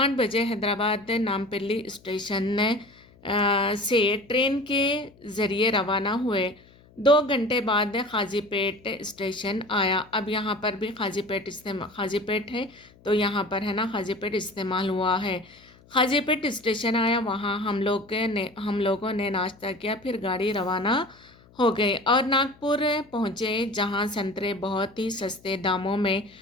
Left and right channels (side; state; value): left; noise; hum, 27 dB below the sound